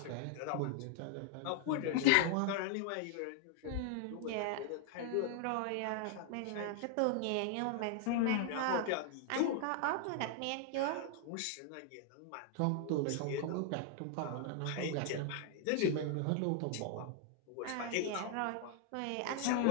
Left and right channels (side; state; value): both; different; correlation 0.00